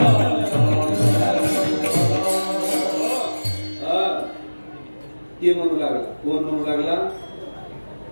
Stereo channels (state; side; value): inverted; both; correlation -1.00